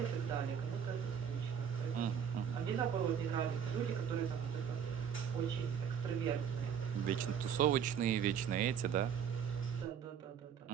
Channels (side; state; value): left; quieter; 7.9 dB